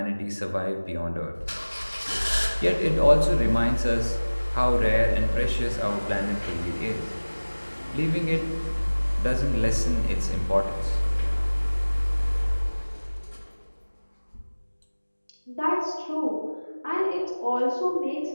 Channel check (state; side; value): inverted; both; correlation -1.00